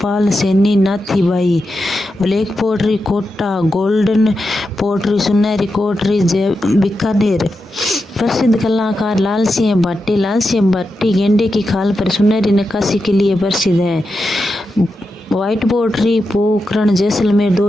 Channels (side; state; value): both; normal; correlation 0.88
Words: Saini, Nathibai. Black pottery Kota, golden pottery सुनहरी पोट्री बीकानेर। प्रसिद्ध कलाकार लाल सिंह भट्टी। लाल सिंह भट्टी गेंडे की खाल पर सुनहरी नक्काशी के लिए प्रसिद्ध है। व्हाइट पोट्री पोखरण जैसलमेर